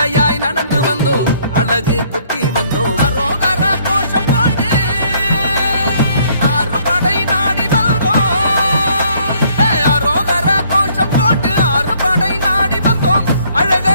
நடந்து வந்தோம், அழகு குத்தி வந்தோம். அரோகர கோஷம் போட்டு ஆறுபடை நாடி வந்தோம். அரோகர கோஷம் போட்டு ஆறுபடை நாடி வந்தோம்,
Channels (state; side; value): inverted; both; correlation -0.63